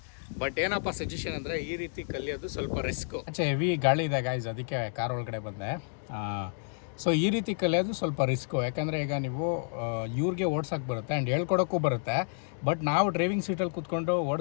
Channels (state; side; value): silent; right; digital silence